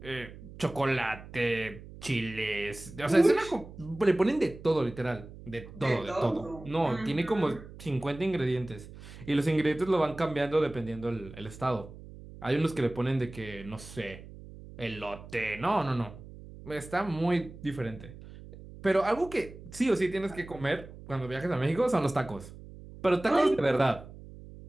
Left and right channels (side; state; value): right; noise; hum, 16 dB below the sound